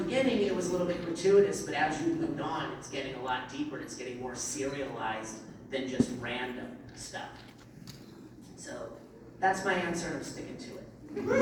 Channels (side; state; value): both; identical; correlation 1.00